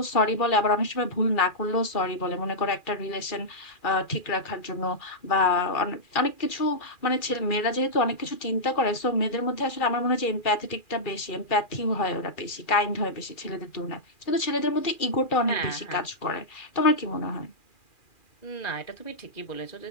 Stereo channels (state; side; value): late; right; 2.4 ms